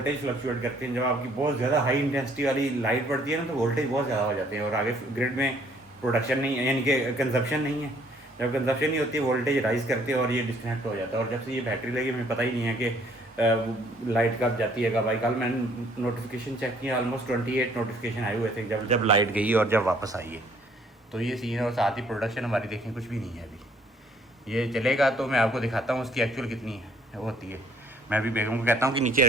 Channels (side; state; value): both; normal; correlation 0.62